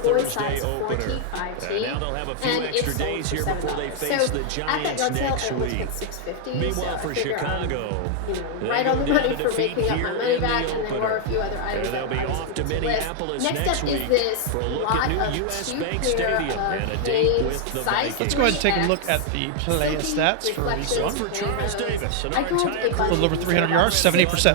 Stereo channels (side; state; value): both; different; correlation 0.00